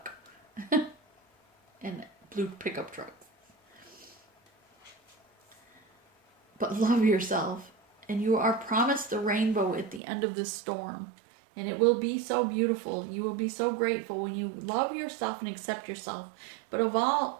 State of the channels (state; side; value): drops out; left; at 10.0 s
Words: And blue pickup trucks. But love yourself. And you are promised the rainbow at the end of the storm. And it will be so beautiful. You will be so grateful when you love yourself and accept yourself. But of